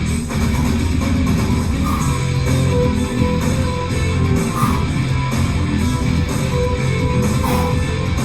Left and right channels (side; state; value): both; identical; correlation 1.00